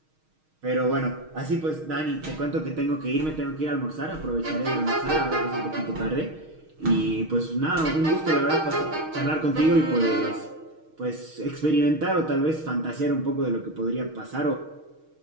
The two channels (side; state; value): left; late; 6.4 ms